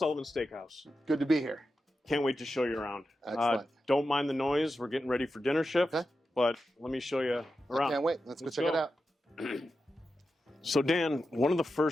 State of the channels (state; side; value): normal; both; correlation 0.90